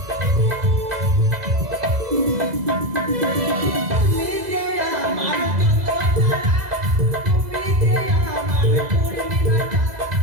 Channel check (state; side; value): late; left; 2.0 ms